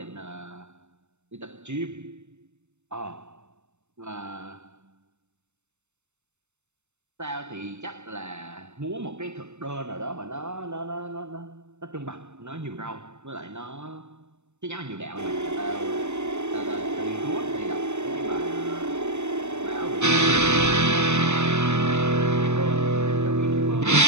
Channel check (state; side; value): late; left; 0.82 ms